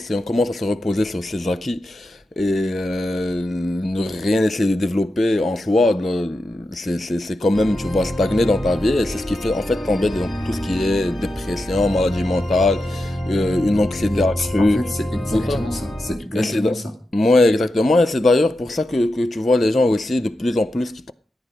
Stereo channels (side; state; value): both; normal; correlation 0.89